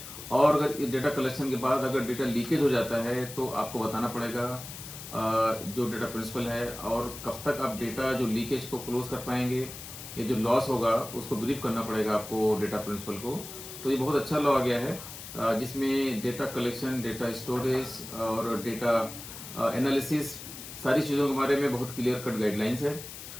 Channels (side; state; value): left; noise; hiss, 12 dB below the sound